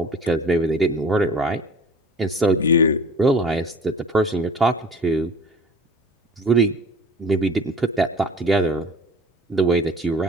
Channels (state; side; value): normal; both; correlation 0.44